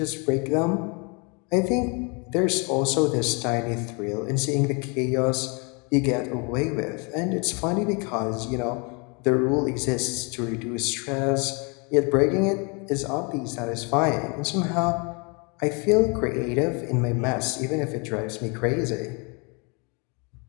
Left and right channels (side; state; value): right; quieter; 32.3 dB